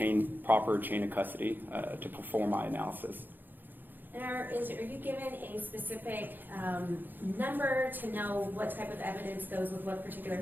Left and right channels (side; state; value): left; late; 0.090 ms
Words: proper chain of custody, to perform my analysis. And are you given a specific number to know what type of evidence goes with what particular